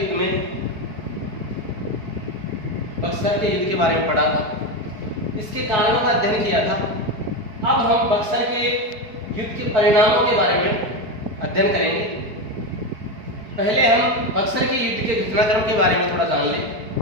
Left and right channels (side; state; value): left; late; 4.7 ms